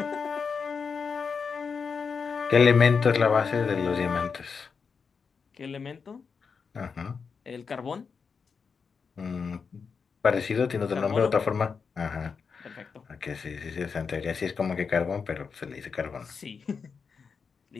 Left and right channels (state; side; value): quieter; right; 5.6 dB